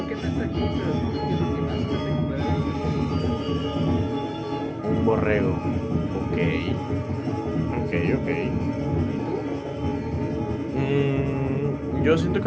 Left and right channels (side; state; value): both; identical; correlation 1.00